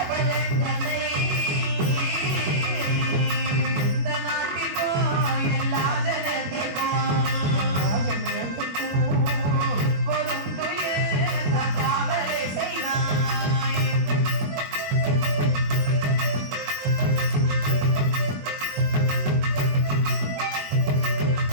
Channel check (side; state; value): left; late; 21 ms